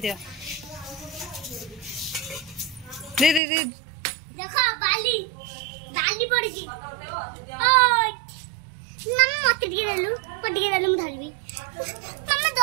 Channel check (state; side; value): drops out; left; at 3.4 s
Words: दे देखो बाली पड़ गई ओय नम मत गिरलु म धरबी मम्मा